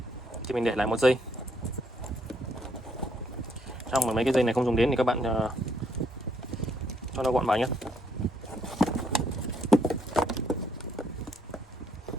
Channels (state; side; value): normal; both; correlation 0.71